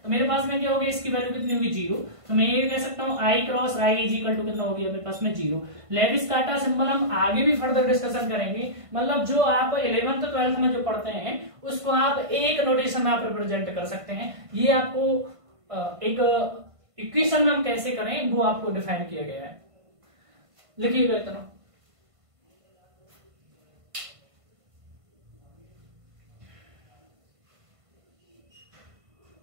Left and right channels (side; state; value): left; late; 1.5 ms